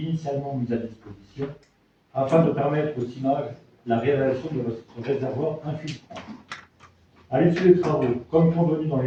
mis à disposition, afin de permettre au CIMAGE la réalisation de ce réservoir infiltrant. À l'issue des travaux, comme convenu dans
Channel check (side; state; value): both; identical; correlation 1.00